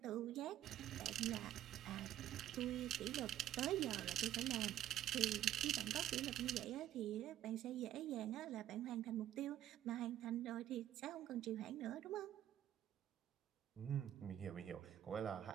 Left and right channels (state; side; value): quieter; left; 12.0 dB